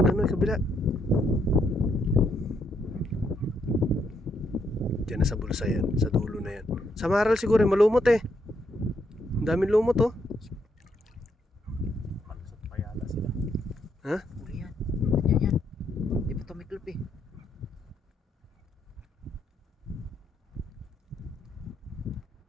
Diyan na sa bulsa yan. Sa dulo na yan. Sa maral siguro, malumot eh. Ang daming lumot oh. Malusot pa yata sila. Ha? Huli yan. Yan. Di pa ito may club eh.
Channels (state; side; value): normal; both; correlation 0.76